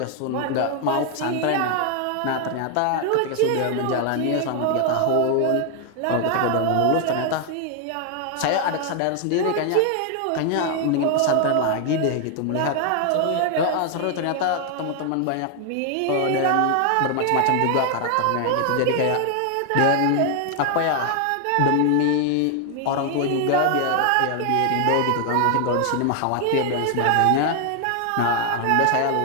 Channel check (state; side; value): different; both; correlation 0.00